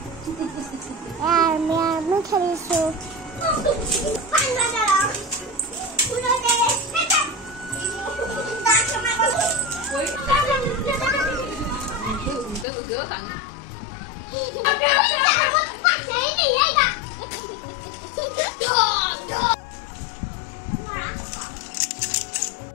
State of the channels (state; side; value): drops out; right; at 12.7 s